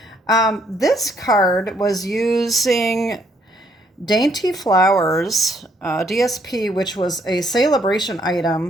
This card was using Dainty Flowers DSP, which was a celebration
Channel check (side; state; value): both; normal; correlation 0.69